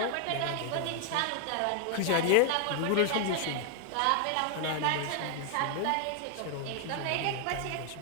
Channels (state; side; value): different; both; correlation 0.00